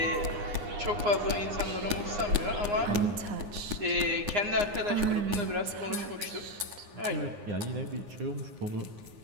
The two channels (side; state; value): left; late; 9.7 ms